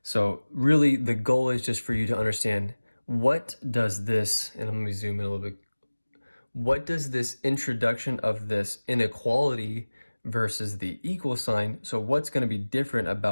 So really the goal is just for you to understand, what does this, and I'm going to zoom in a little bit, what does this introduction of this inequality versus the equal sign, so what's going to be different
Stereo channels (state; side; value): inverted; both; correlation -1.00